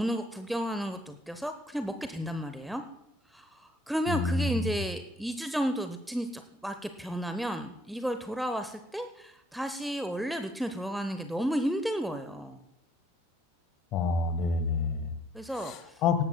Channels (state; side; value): normal; both; correlation 0.65